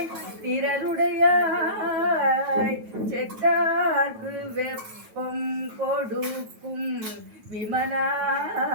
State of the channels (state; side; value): late; left; 9.2 ms